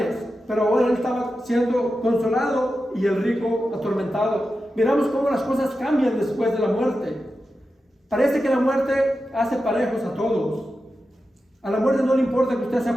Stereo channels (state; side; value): normal; both; correlation 0.91